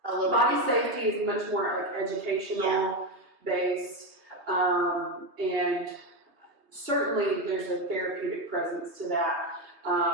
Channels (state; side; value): late; left; 2.6 ms